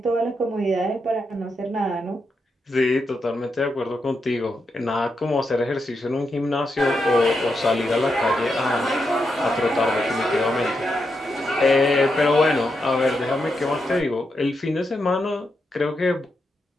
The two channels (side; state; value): both; normal; correlation 0.84